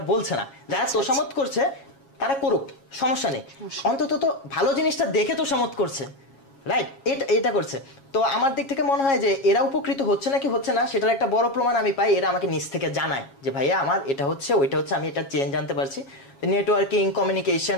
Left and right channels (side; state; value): right; late; 7.3 ms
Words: বলছে না। যারা তোষামত করছে তারা করুক, সমস্যা নেই, অন্তত তো ভালো জিনিসটা দেখে তোষামত করছে, রাইট? এটা করছে। তো আমার দিক থেকে মনে হয় যে এরা উপকৃত হচ্ছে নাকি হচ্ছে না, সেটার একটা বড় প্রমাণ আমি পাই, এরা আমাকে নিজ থেকে জানায় যে ভাইয়া আমার এটা হচ্ছে, ওইটা হচ্ছে, আমি এটা চেঞ্জ আনতে পারছি। নেটওয়ার্কিং, কমিউনিকেশন,